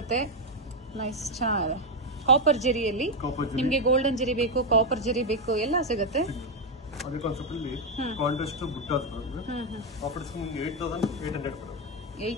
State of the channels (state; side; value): normal; both; correlation 0.04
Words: ನೈಸ್, ಚೆನ್ನಾಗಿದೆ. ಕಾಪರ್ ಜರಿಯಲ್ಲಿ ನಿಮ್ಗೆ ಗೋಲ್ಡನ್ ಜರಿ ಬೇಕು, ಕಾಪರ್ ಜರಿ ಬೇಕು, ಎಲ್ಲ ಸಿಗುತ್ತೆ. ಅದೇ ಕಾನ್ಸೆಪ್ಟ್ ಅಲ್ಲಿ ಕಾಂಟ್ರಾಸ್ಟ್ ಬುಟ್ಟಾಸ್ ಬರುತ್ತೆ. ಆಫರ್ ಡಿಸ್ಕೌಂಟ್ 8800 ಬರುತ್ತೆ.